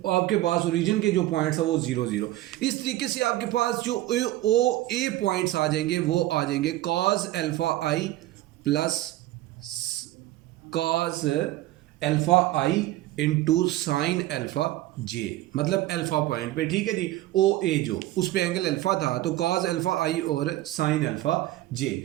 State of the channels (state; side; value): quieter; left; 15.9 dB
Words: आपके पास ओरिजिन के जो पॉइंट्स है वो 0 0। इस तरीके से आपके पास जो ओ ए पॉइंट्स आ जाएंगे वो आ जाएंगे cause alpha I plus cos alpha I into sine alpha जे, मतलब अल्फा पॉइंट पे। ठीक है जी, ओ ए जो उस पे एंगल अल्फा था तो कॉज अल्फा आई और साइन अल्फा जे।